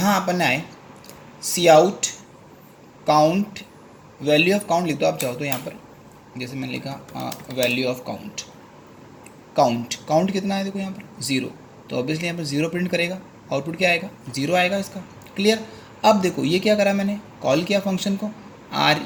अपन आए, cout count, value of count लिख दो आप चाहो तो। यहाँ पर जैसे मैंने लिखा वैल्यू ऑफ काउंट, काउंट कितना है देखो यहाँ पर 0, तो ऑब्वियसली यहाँ पर 0 प्रिंट करेगा। आउटपुट क्या आएगा, 0 आएगा इसका। क्लियर। अब देखो ये क्या करा, मैंने कॉल किया फंक्शन को,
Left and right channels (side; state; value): both; identical; correlation 1.00